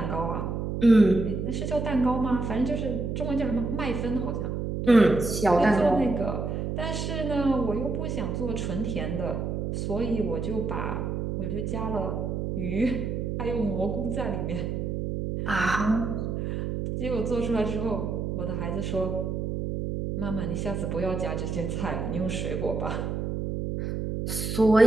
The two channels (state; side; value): noise; right; hum, 2 dB below the sound